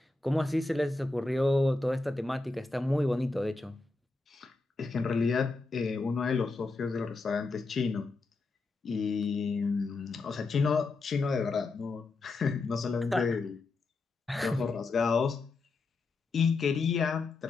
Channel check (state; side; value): quieter; right; 3.6 dB